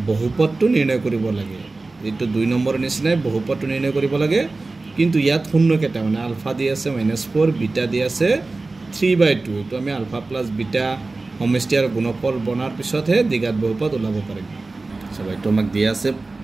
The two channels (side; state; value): left; quieter; 3.4 dB